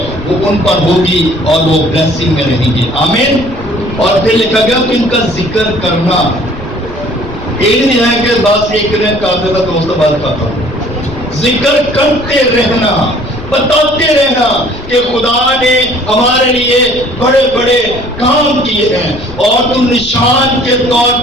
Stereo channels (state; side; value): noise; left; rumble, 16 dB below the sound